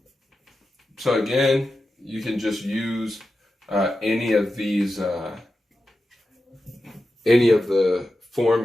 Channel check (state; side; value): normal; both; correlation 0.91